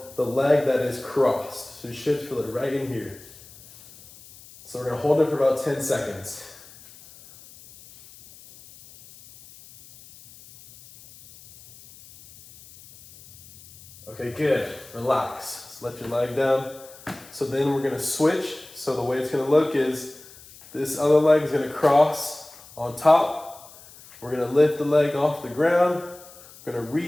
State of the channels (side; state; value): left; noise; hiss, 21 dB below the sound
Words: the leg that is crossed. So you should feel it right in here. So we're gonna hold it for about 10 seconds. Okay, good, relax. Just let your leg down. So then we're gonna switch. So the way it's gonna look is this other leg is gonna cross on top. We're gonna lift the leg off the ground. We're gonna